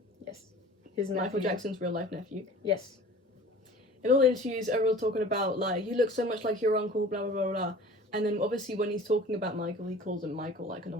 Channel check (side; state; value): both; normal; correlation 0.44